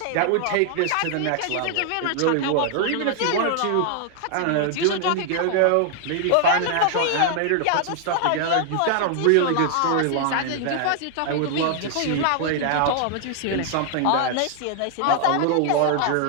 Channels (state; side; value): different; both; correlation 0.00